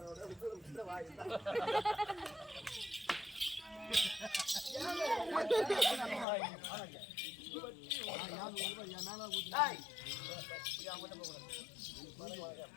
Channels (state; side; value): drops out; right; at 6.2 s